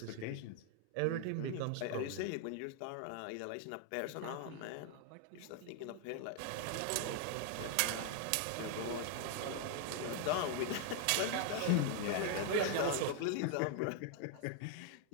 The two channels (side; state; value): both; different; correlation 0.00